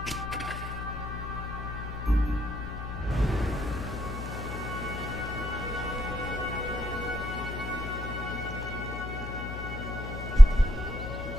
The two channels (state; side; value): noise; left; hum, 8 dB below the sound